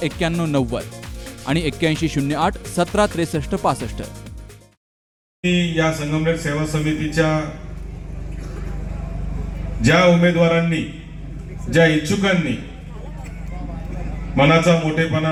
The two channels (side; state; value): both; identical; correlation 1.00